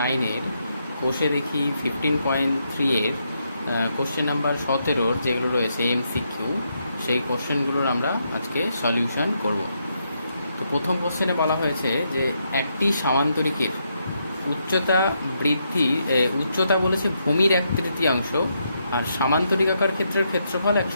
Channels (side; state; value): both; inverted; correlation -0.79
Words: কোষে দেখি 15.3 এর কোশ্চেন নাম্বার 17 যেগুলো রয়েছে এমসিকিউ, সেই কোশ্চেনগুলোর আমরা আজকে সলিউশন করব। তো প্রথম কোশ্চেনে বলা হয়েছে যে একটি সামান্তরিকের উচ্চতা বলেছে ভূমির 1/3, আর সামান্তরিকাকার ক্ষেত্রের ক্ষেত্রফল